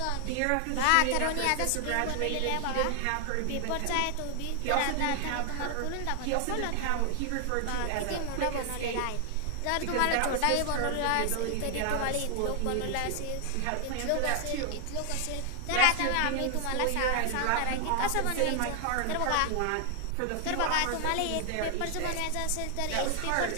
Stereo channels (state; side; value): different; both; correlation 0.00